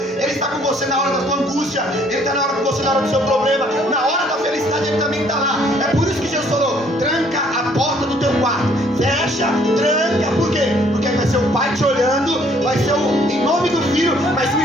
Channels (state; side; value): normal; both; correlation 0.62